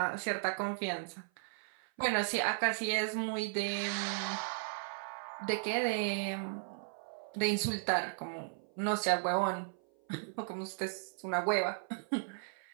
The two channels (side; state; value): left; silent; 54 dB below the other